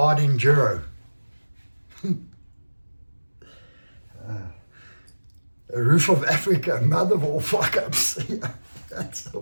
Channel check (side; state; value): both; inverted; correlation -1.00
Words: enduro. Roof of Africa, mother of all fuck-ups. Yeah, that's the